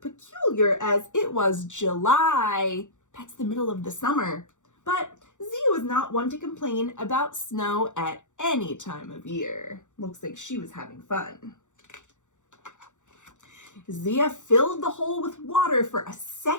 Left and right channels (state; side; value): late; right; 0.85 ms